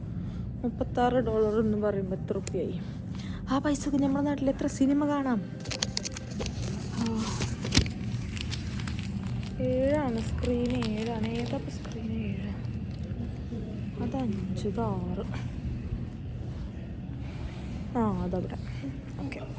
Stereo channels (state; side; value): identical; both; correlation 1.00